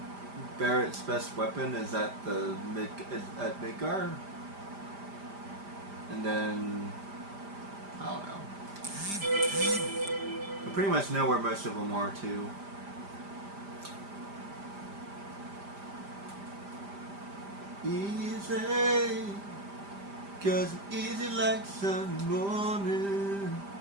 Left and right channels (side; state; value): left; late; 5.0 ms